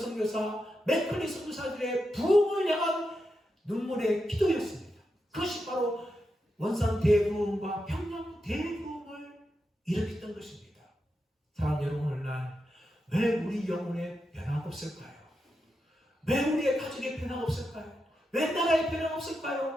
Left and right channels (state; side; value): normal; both; correlation 0.87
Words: 맥클리 선교사들의 부흥을 향한 눈물의 기도였습니다. 그것이 바로 원산 대부흥과 평양 대부흥을 일으켰던 것입니다. 사랑 여러분, 오늘날 왜 우리 영혼에 변화가 없을까요? 왜 우리의 가족에 변화가 없을까요? 왜 나라에 변화가